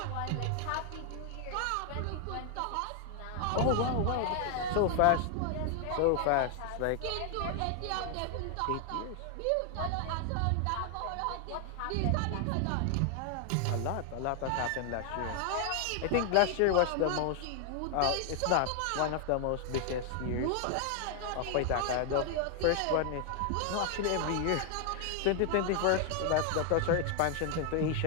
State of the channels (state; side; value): different; both; correlation 0.00